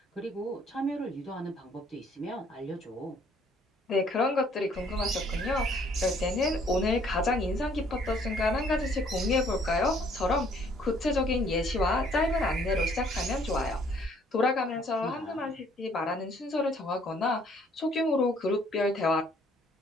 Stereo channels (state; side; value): normal; both; correlation 0.62